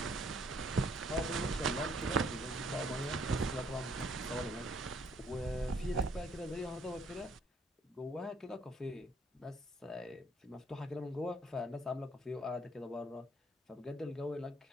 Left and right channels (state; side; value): normal; both; correlation 0.65